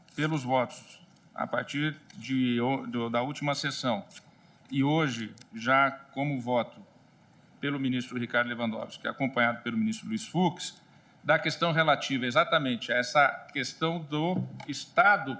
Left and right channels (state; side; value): identical; both; correlation 1.00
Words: pelos votos a partir da última sessão, e hoje, já como voto pelo ministro Ricardo Lewandowski, acompanhado pelo ministro Luiz Fux, da questão relativa exatamente a essa questão do Estado